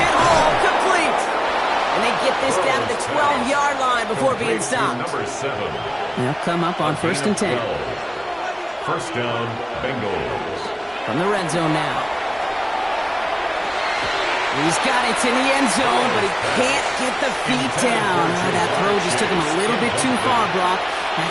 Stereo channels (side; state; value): both; identical; correlation 1.00